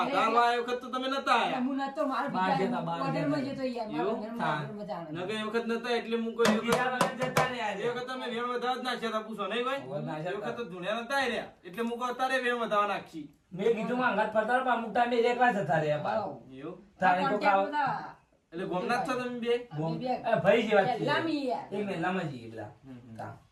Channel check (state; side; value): identical; both; correlation 1.00